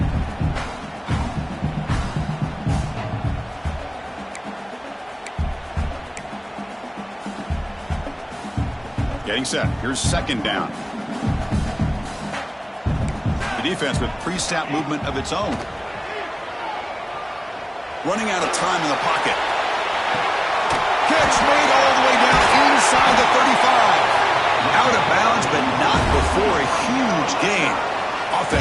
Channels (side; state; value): both; identical; correlation 1.00